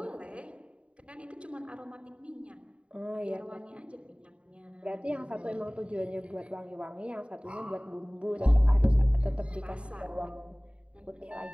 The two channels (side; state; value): left; late; 0.059 ms